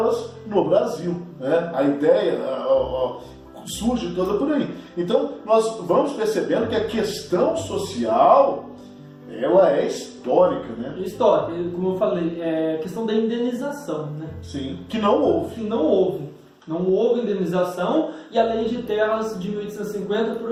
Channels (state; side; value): identical; both; correlation 1.00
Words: no Brasil, né? A ideia surge toda por aí. Então nós vamos percebendo que a questão social, ela é histórica, né? Histórica, como eu falei, é questão da indenização, né? Sim, que não houve. Não houve indenização, e a lei de terras de 1850